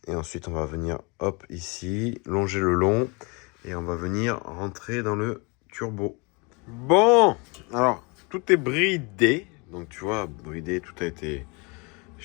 et ensuite on va venir, hop, ici, longer le long, et on va venir rentrer dans le turbo. Bon, alors, tout est bridé, Donc tu vois, bridé, tout a été...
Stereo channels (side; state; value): right; quieter; 29.8 dB